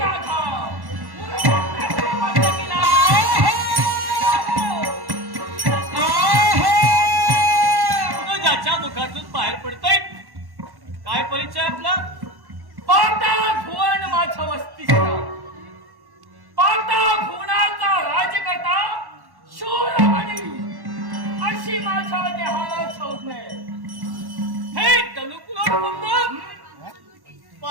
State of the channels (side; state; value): left; late; 1.1 ms